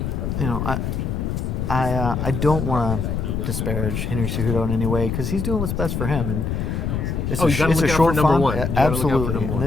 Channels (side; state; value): left; noise; rumble, 2 dB below the sound